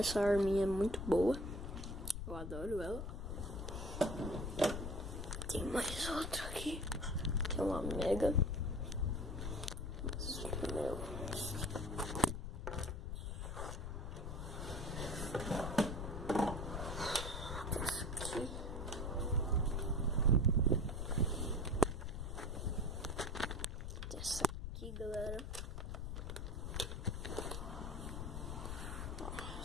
arminha é muito boa. Eu adoro ela. Tem mais outra aqui. Que é uma mega. Mas primeiro. Essa aqui. Essa aqui, galera.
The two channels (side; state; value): left; noise; rumble, 5 dB below the sound